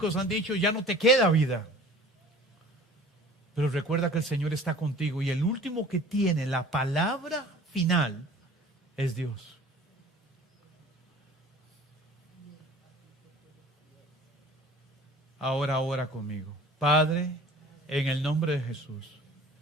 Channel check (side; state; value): both; normal; correlation 0.46